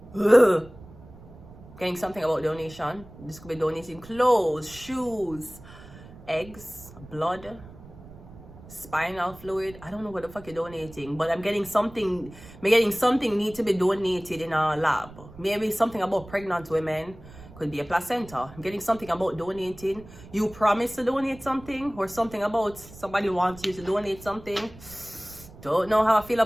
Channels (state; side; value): noise; right; rumble, 19 dB below the sound